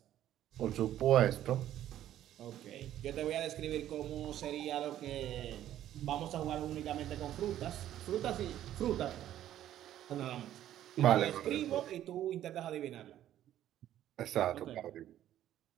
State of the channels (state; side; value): quieter; left; 12.1 dB